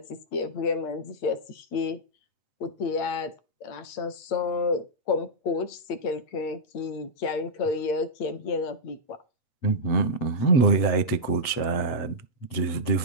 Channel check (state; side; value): late; right; 7.9 ms